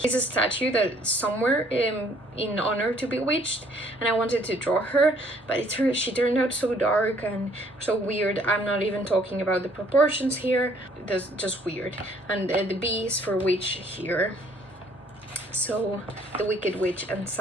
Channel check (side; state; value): both; normal; correlation 0.61